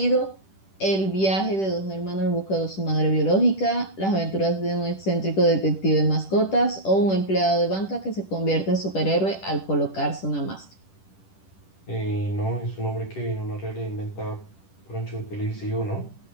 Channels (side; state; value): right; late; 10 ms